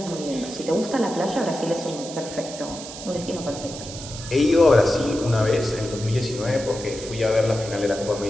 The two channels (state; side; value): noise; right; hiss, 12 dB below the sound